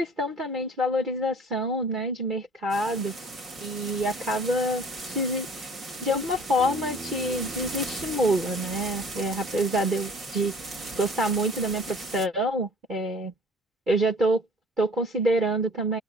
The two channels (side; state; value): both; normal; correlation 0.49